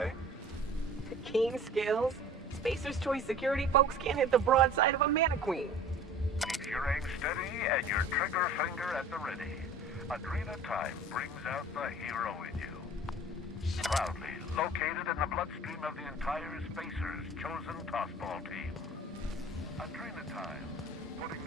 Keen skills. Spacer's Choice security folks can't hit the broadside of a mannequin. Keep your aim steady and your trigger finger at the ready. Adrena Time brings out the hero in you. Proudly located in the bloodstream of the entire Spacer's chosen tossball team. Adrena Time, putting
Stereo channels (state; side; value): normal; both; correlation 0.44